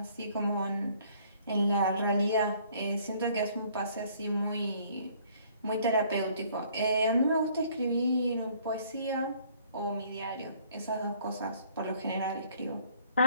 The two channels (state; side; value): inverted; both; correlation -0.60